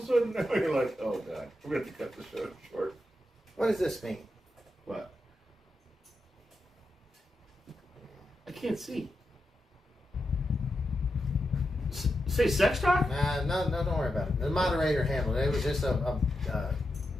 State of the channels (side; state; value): both; normal; correlation 0.87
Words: a sudden now you're like, oh god, we're going to cut the show short. What does this mean? What? I can't see. Say sex talk? No, don't worry about it. The moderator handled it. It was just a